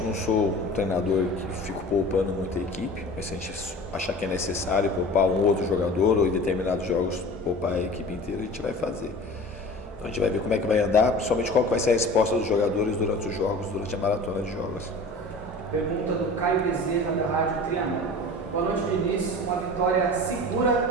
não sou um treinador que fico poupando muita equipe, mas se a gente achar que é necessário poupar um outro jogador ou em determinados jogos poupar a equipe inteira, a gente vai fazer. Então a gente vai ver como é que vai andar, principalmente qual que vai ser a resposta dos jogadores durante os jogos, durante a maratona de jogos. Pergunta do Caio Bezerra, da Rádio Triângulo. Boa noite, Diniz. Uma vitória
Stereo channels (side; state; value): both; normal; correlation 0.39